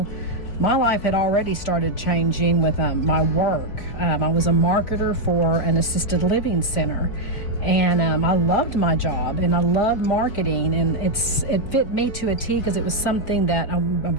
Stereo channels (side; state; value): right; late; 4.8 ms